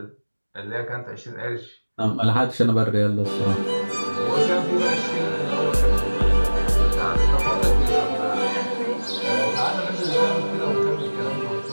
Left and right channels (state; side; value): inverted; both; correlation -1.00